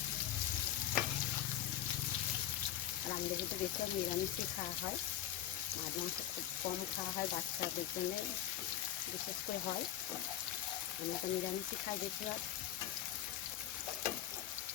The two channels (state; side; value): quieter; right; 11.3 dB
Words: আর আমাদের কিন্তু বেশি নিরামিষই খাওয়া হয়, মাঝে মাঝে খুব কম খাওয়া হয়, বাচ্চাদের জন্য বিশেষ করে হয়। আমরা তো নিরামিষই খাই বেশিরভাগ।